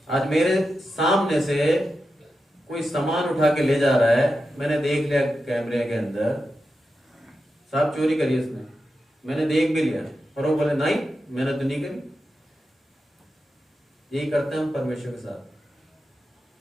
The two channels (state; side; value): normal; both; correlation 0.90